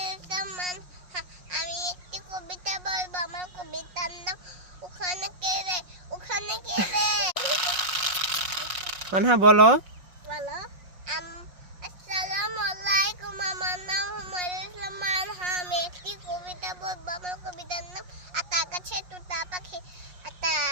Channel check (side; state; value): left; late; 5.5 ms